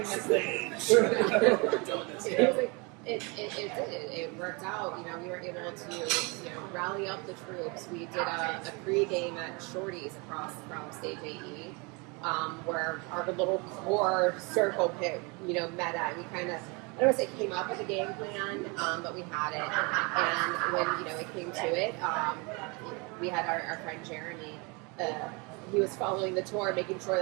this thing. It worked out. We were able to, rally up the troops. We did a pre-game at Shorty's across from Stage AE, where our little core circle pit, met at. We kind of, I don't want to say came up with a game plan, but we had it. And when, it came to it, we had our friend Jeremy. He was following the tour, making sure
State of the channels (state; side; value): quieter; left; 29.8 dB